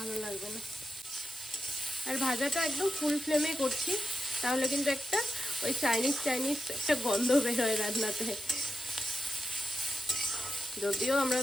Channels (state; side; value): normal; both; correlation 0.88